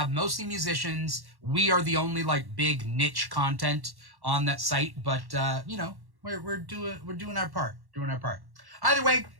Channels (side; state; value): left; late; 1.1 ms